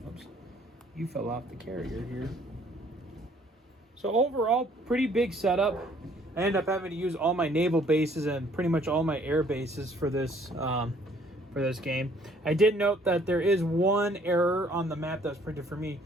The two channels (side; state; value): both; normal; correlation 0.60